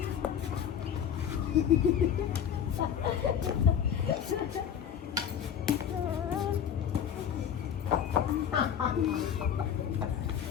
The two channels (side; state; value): right; quieter; 8.7 dB